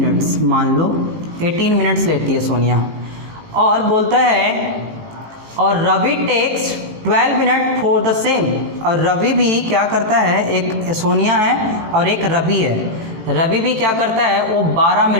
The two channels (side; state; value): left; late; 18 ms